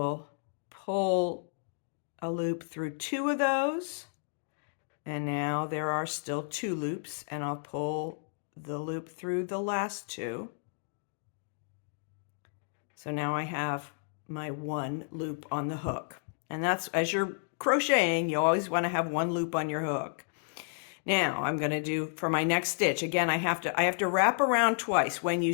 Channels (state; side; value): silent; right; digital silence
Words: pull a loop through 2 of those. And now there are still 2 loops, and I'll pull the loop through the last 2. So now I have my 1 loop on the hook. And that's, as you're crocheting, you always want to have 1 loop on your hook. Now I'm going to do for my next stitch. Again, I have to wrap around twice. When you